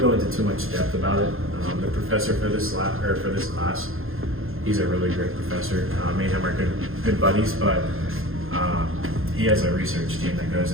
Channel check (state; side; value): late; left; 0.60 ms